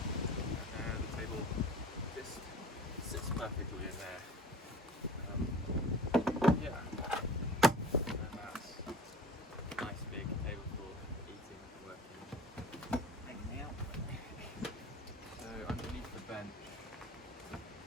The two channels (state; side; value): normal; both; correlation 0.42